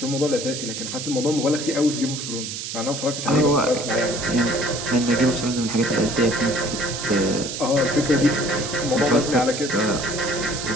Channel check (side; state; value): right; noise; hiss, 6 dB below the sound